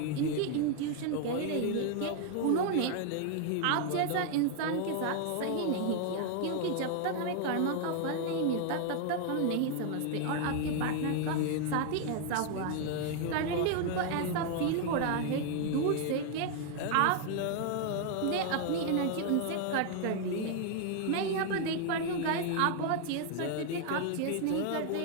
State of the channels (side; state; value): both; different; correlation 0.00